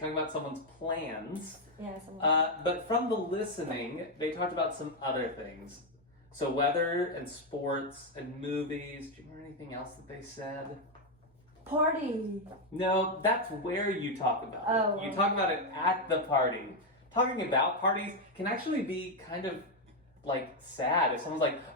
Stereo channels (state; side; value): normal; both; correlation 0.03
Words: about someone's plans. Yeah, But from the listening, they talked about some other things. So weather and sports and movies. Do you remember anything else that they said? Party. No, that's where you talk about Oh, it. You talk about it at the party. Talking about parties can actually be kind of like sad. If someone's like,